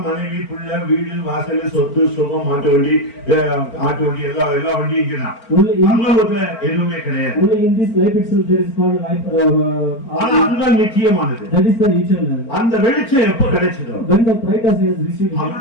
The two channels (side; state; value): right; late; 4.4 ms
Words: மனைவி பிள்ளை வீடு வாசல் சொத்து சுகம் ஆட்டு வண்டி எல்லா வண்டியும் இங்கதான். பரலோகத்துல எதுவுமே கிடையாது. only in this life itself there is called life. ஆனா அதுதான் நித்தியமானது. that is the eternal. அந்த வெளிச்சம் எப்ப கிடைச்சதோ when the brightness has received